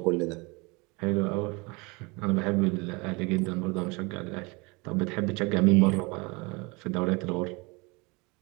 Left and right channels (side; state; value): left; quieter; 27.3 dB